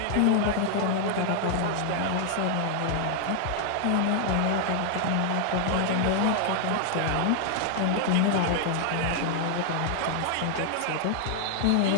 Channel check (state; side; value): different; both; correlation 0.00